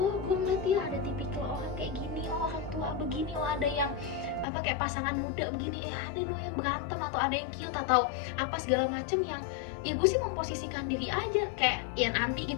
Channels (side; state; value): right; drops out; at 4.5 s